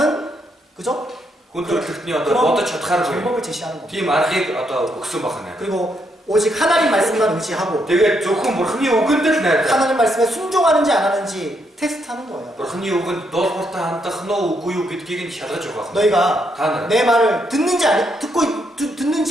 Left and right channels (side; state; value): both; normal; correlation 0.76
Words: 그죠? хүн төрөлхтний одоо бодож чадхааргүй 방법을 제시하는 겁니다. тийм аргыг одоо өгсөн байна. 그리고 오직 하나님 말씀만 의지하고 тэгээд зөвхөн бурхны үгэнд л найдах. 하나님 말씀에 순종하는지 안 하는지 테스트하는 거예요. бурхны үгэнд дуулууртаа хандах нь үгүй юу гэдгийг нь шалгаж байгаа. 너희가 та нар 내 말을 듣는지